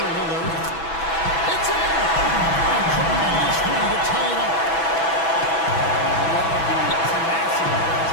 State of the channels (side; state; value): right; late; 6.1 ms